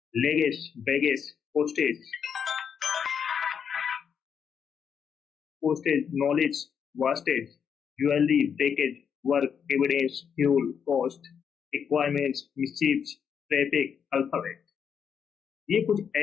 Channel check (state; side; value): quieter; right; 7.3 dB